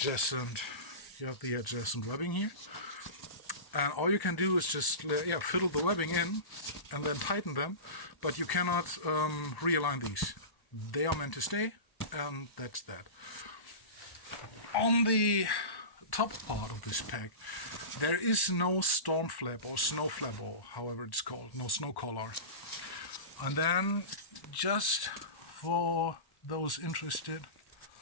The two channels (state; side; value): late; right; 1.1 ms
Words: webbing here, and all you can do is just fiddle the webbing in and then tighten them, but you cannot realign these. They are meant to stay, and that's that. On the top part of this pack, there is no storm flap or snow flap, or however it's called, no snow collar. And then, just for those interested,